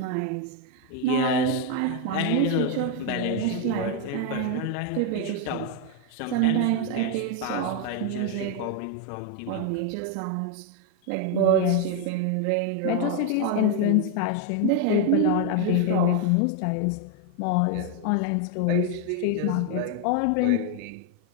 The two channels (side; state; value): both; different; correlation 0.01